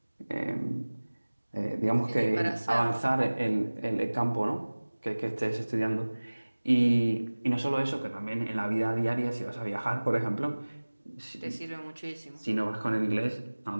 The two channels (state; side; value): inverted; both; correlation -1.00